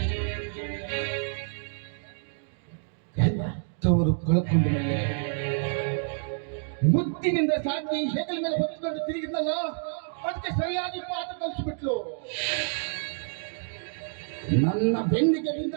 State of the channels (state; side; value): silent; left; digital silence